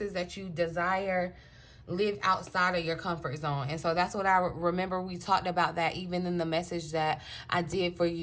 that you desire live outside of your comfort zone. And so that's what I remember. We talked about that even in the message that I did for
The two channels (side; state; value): both; identical; correlation 1.00